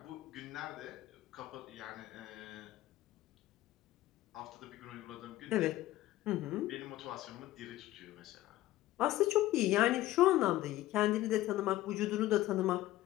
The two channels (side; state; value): right; quieter; 15.7 dB